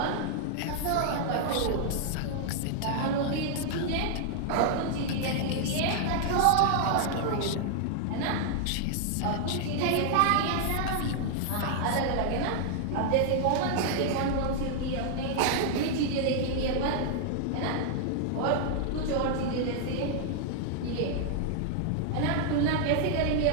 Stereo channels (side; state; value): both; different; correlation 0.00